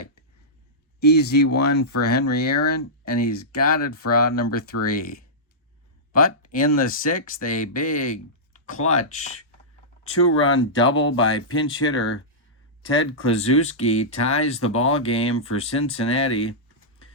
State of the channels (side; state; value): both; normal; correlation -0.14